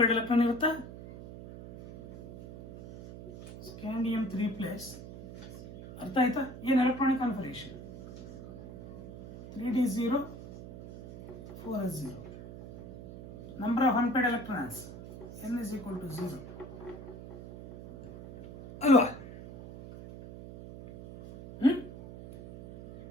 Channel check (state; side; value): noise; right; hum, 13 dB below the sound